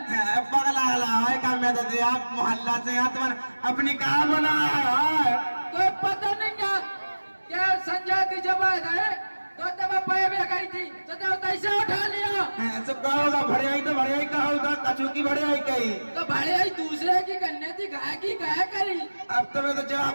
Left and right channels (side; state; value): both; inverted; correlation -1.00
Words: पगला है का मैं तो आप मोहल्ला से तुम्हारे अपनी कहा बना है कोई पता नहीं है क्या संजय की जब आए तो तब पाए भी गई थी तो कैसे उठा लिया सब कहोगा भड़ियाई तो भड़ियाई का होगा कछू की भड़ियाई कही तो भड़ियाई दूसरे की करने थी गाय की गाय करी। अब तो मैं तो